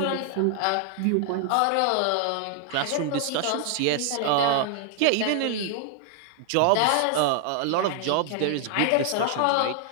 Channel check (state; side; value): different; both; correlation 0.00